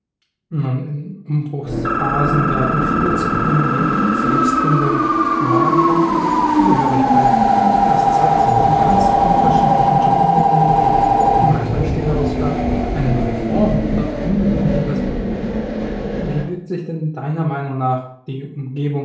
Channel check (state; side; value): identical; both; correlation 1.00